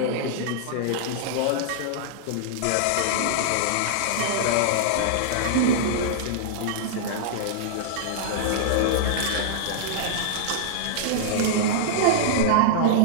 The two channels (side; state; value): both; different; correlation -0.02